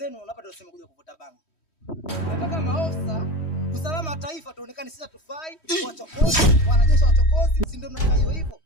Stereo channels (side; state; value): right; late; 3.1 ms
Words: unapata useme kuja kuvuta bangi. Nataka maofisa usalama wa taifa tuonekane sisi hatufai, wachokozi, wanajeshi wachokozi, si ndio mnataka hiyo hivyo?